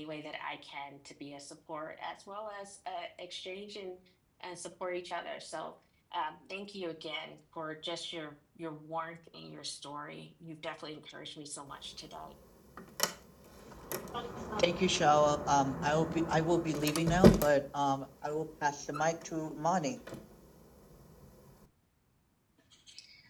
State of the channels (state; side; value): identical; both; correlation 1.00